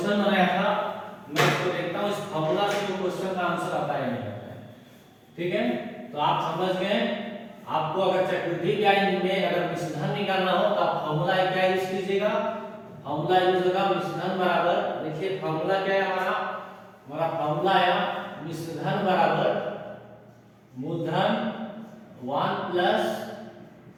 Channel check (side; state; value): both; identical; correlation 1.00